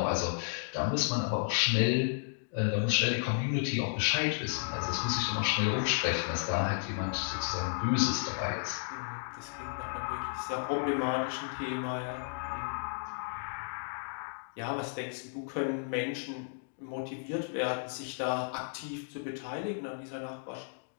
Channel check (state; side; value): silent; right; digital silence